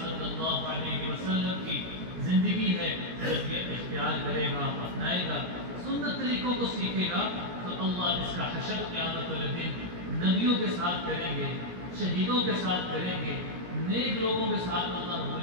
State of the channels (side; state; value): left; late; 17 ms